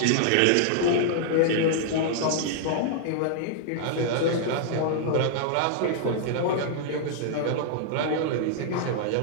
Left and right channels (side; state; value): both; different; correlation -0.01